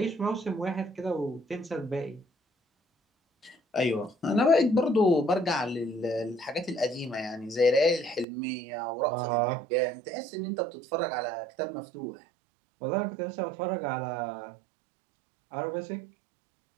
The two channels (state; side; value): drops out; left; at 8.2 s